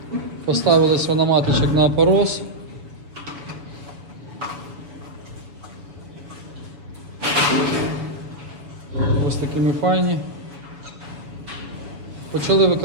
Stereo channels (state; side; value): late; left; 7.0 ms